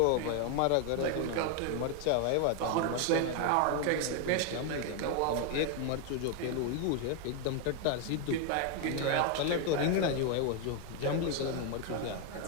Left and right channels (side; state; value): both; different; correlation 0.01